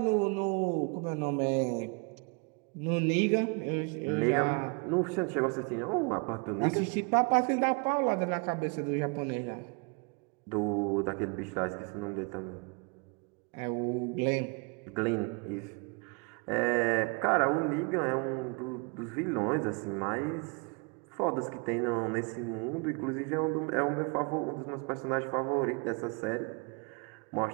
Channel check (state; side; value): quieter; left; 33.2 dB